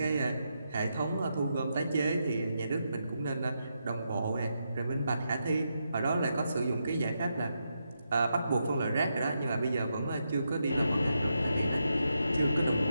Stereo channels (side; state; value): both; inverted; correlation -0.84